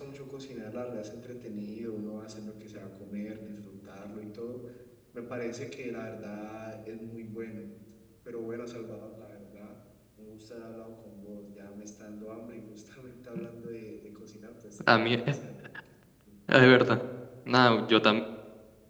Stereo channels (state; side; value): identical; both; correlation 1.00